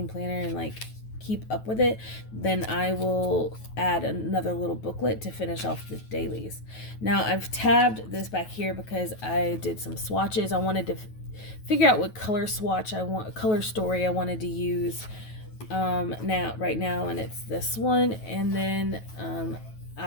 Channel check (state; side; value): late; right; 9.3 ms